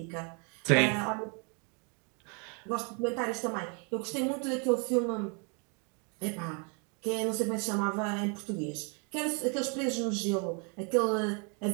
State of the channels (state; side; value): quieter; left; 35.8 dB